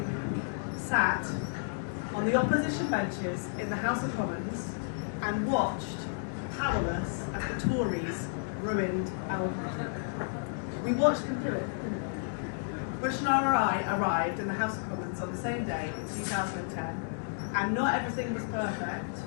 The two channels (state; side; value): silent; right; digital silence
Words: sat on the opposition benches in the House of Commons and watched powerless as the Tories ruined our country. We watched them do it. Rushnara and I arrived in the House of Commons on the same day in 2010, and not everything was perfect,